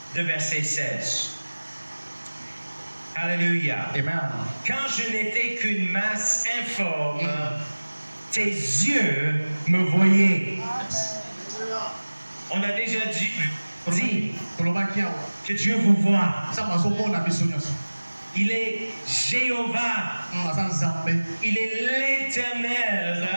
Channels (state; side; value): inverted; both; correlation -1.00